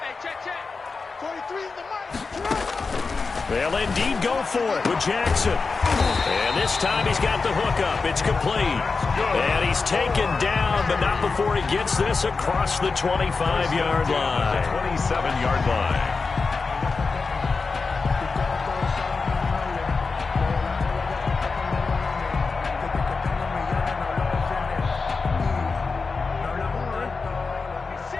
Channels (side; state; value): right; quieter; 4.4 dB